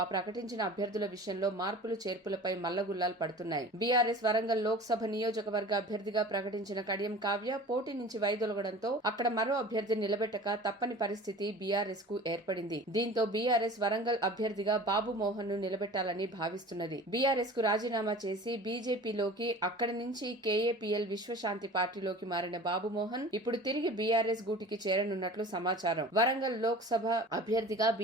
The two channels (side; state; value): both; normal; correlation 0.40